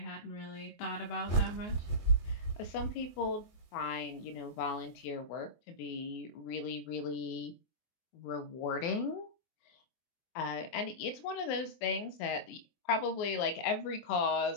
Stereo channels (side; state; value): right; late; 24 ms